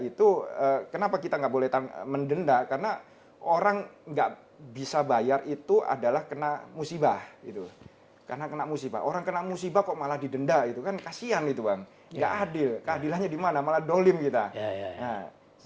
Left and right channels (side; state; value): both; identical; correlation 1.00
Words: kenapa kita nggak boleh mendenda? Karena orang nggak bisa bayar itu adalah kena musibah gitu. Karena kena musibah. Orang kena musibah kok malah didenda itu kan kasihan itu, Bang. Nggak adil. Keadilannya di mana? Malah dolim kita. Ya. Nah,